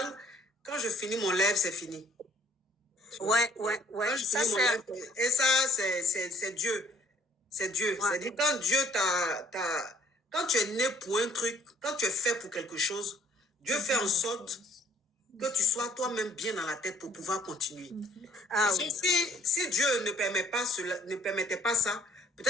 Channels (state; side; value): normal; both; correlation 0.60